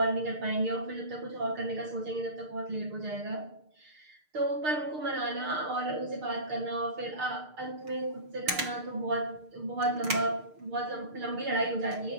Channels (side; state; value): left; late; 6.6 ms